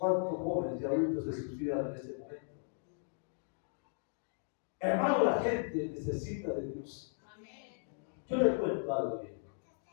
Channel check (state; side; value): silent; right; digital silence